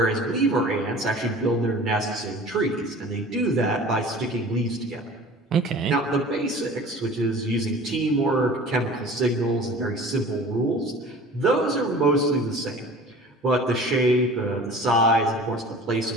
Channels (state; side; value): normal; both; correlation 0.42